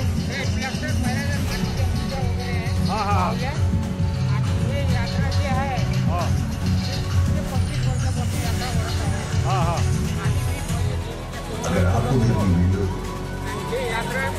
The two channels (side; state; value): both; identical; correlation 1.00